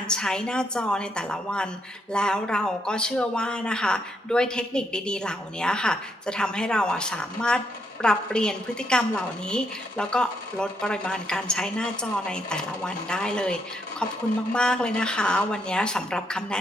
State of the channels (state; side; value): normal; both; correlation 0.76